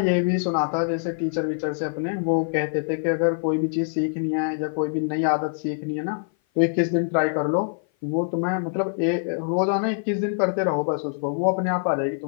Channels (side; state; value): right; silent; 56 dB below the other